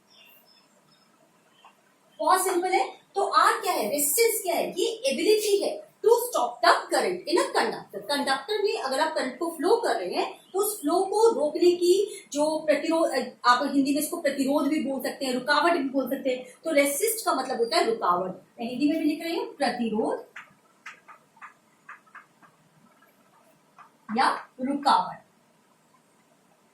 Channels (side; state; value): both; identical; correlation 1.00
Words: बहुत सिंपल है। तो R क्या है? रेसिस्टेंस क्या है? ये एबिलिटी है to stop the current in a conductor. Conductor में अगर आप करंट को फ्लो कर रहे हैं तो उस फ्लो को रोकने की जो प्रतिरोध, आप हिंदी में इसको प्रतिरोध भी बोल सकते हैं, रुकावट भी बोल सकते हैं। तो रेसिस्ट का मतलब होता है रुकावट। मैं हिंदी में भी लिख रही हूँ, प्रतिरोध या रुकावट।